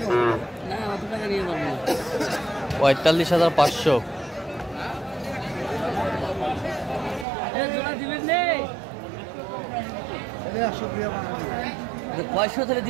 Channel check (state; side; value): drops out; left; at 7.2 s